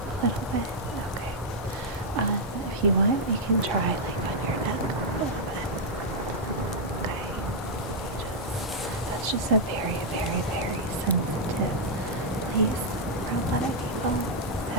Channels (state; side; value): normal; both; correlation -0.05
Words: if you want, you can try like on your neck a little bit. Okay. That's just a very, very, very sensitive place for a lot of people.